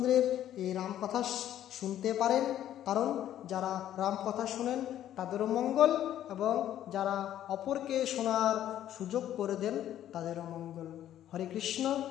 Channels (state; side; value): quieter; right; 11.7 dB